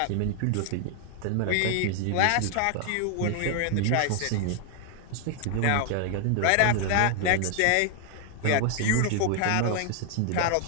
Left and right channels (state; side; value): different; both; correlation 0.00